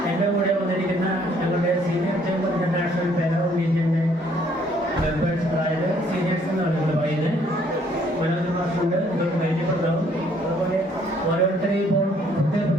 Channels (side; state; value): both; normal; correlation 0.64